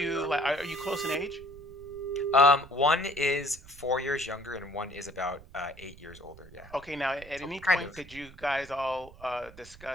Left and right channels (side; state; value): right; noise; rumble, 19 dB below the sound